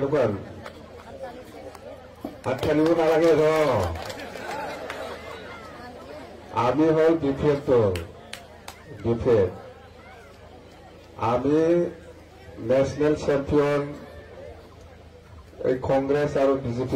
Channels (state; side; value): identical; both; correlation 1.00